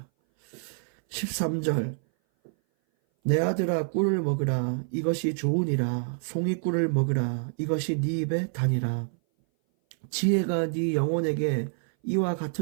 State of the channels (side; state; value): left; silent; 58 dB below the other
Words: 13절 내 아들아 꿀을 먹으라 이것이 좋으니라 송이꿀을 먹으라 이것이 네 입에 다니라 지혜가 네 영혼에게 이와